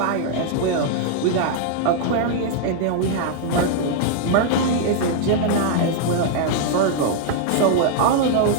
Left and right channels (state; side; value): different; both; correlation -0.01